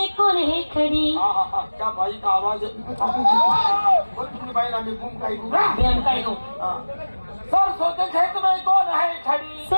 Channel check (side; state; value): both; inverted; correlation -1.00